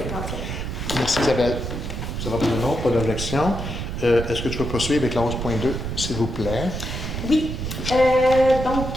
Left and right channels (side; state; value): right; noise; rumble, 5 dB below the sound